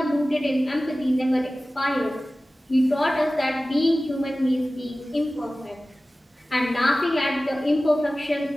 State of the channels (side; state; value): both; normal; correlation 0.96